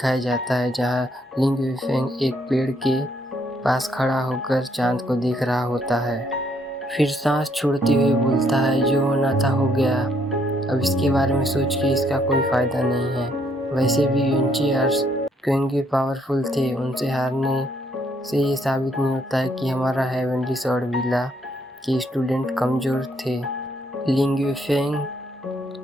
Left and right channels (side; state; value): both; normal; correlation 0.70